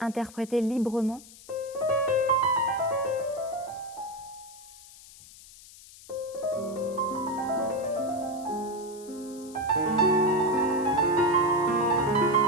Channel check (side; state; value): left; noise; hiss, 20 dB below the sound